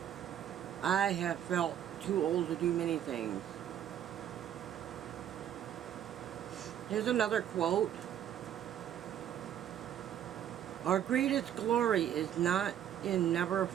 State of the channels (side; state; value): left; quieter; 10.3 dB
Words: I have felt too old to do many things. Here's another quote. Our greatest glory is not in never